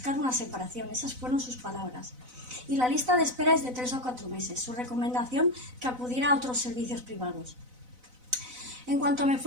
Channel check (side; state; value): left; late; 4.0 ms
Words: una separación. Esas fueron sus palabras. Y la lista de espera es de 3 o 4 meses. Su recomendación, que acudiera a otros servicios privados. En cuanto me